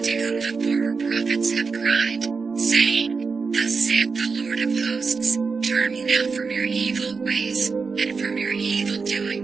whom the former prophets have cried, saying, Thus saith the Lord of hosts, Turn ye now from your evil ways, and from your evil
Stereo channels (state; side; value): quieter; left; 4.9 dB